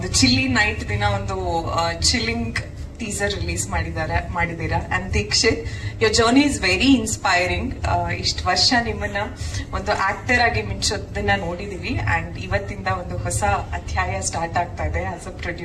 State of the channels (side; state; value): both; identical; correlation 1.00